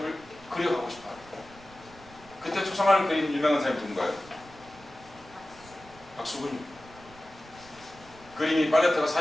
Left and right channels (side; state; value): right; noise; rumble, 22 dB below the sound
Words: 그려가고 싶어요. 그때 초상화를 그린 유명한 사람이 누군가요? 박수근입니다. 그림이 팔레트가